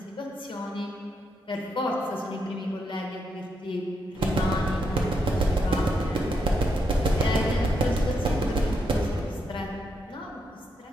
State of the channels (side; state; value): both; normal; correlation 0.80